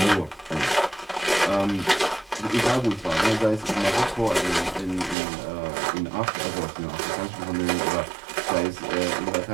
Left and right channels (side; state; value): left; drops out; at 5.2 s